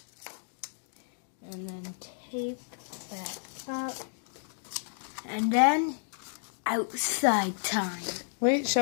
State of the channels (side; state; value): right; silent; digital silence